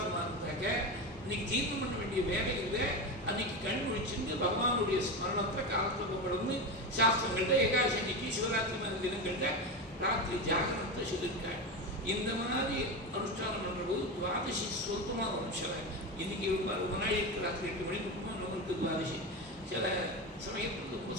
இருந்தாக்க இன்னைக்கு தீர்ந்தம் பண்ண வேண்டிய வேலை இல்லை. அன்னைக்கு கண் முடிச்சுட்டு பகவானுடைய ஸ்மரணத்தை காலத்துப்படணும்னு சாஸ்திரங்கள்ட்ட ஏகாதசி அன்னைக்கு சிவராத்திரி மாதிரி தினங்கள்ட்ட ராத்திரி ஜாகரத்தை சொல்லியிருக்காங்க. இந்த மாதிரி அனுஷ்டானம் பண்ணும்போது துவாதசி சொந்தமாக வரும். சில இன்னைக்கு ரொம்ப நாள் இருக்கு, ராத்திரி 8 மணிக்கு நம்மளுக்கு துவாதசி. சில சமயத்துக்கு ரொம்ப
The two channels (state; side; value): normal; both; correlation 0.19